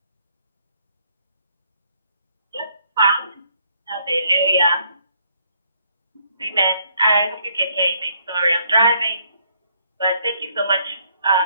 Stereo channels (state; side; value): inverted; both; correlation -0.68